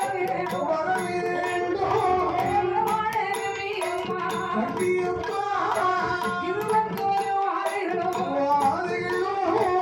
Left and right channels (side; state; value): both; identical; correlation 1.00